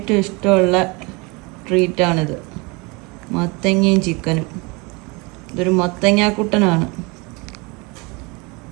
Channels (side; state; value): left; quieter; 27.6 dB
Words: ഇഷ്ടമുള്ള ട്രീറ്റാണിത്. മത്തങ്ങയും ചിക്കനും. ഇതൊരു മത്തങ്ങാക്കുട്ടനാണ്.